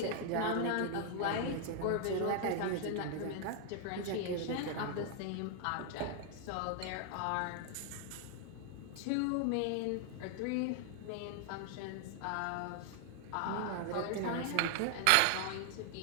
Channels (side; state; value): both; different; correlation 0.00